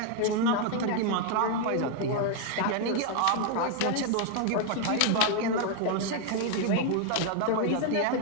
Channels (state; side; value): different; both; correlation 0.01